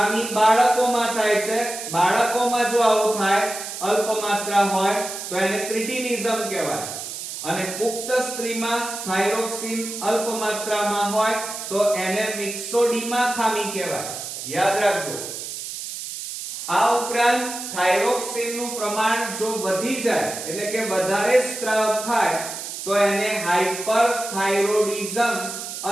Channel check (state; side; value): noise; right; hiss, 8 dB below the sound